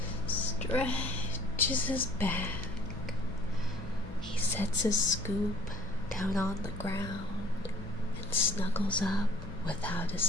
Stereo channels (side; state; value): both; normal; correlation 0.55